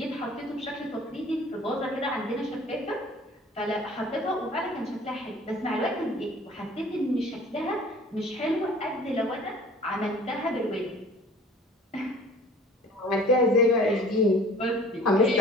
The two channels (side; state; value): both; normal; correlation 0.49